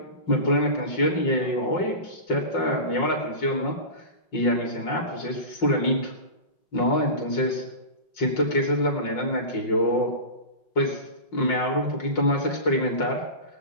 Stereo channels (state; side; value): late; right; 5.6 ms